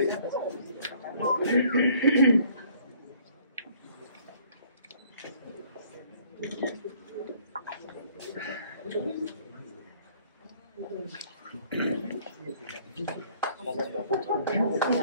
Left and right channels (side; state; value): both; inverted; correlation -0.59